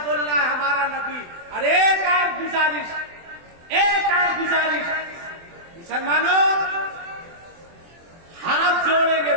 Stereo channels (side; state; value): left; late; 24 ms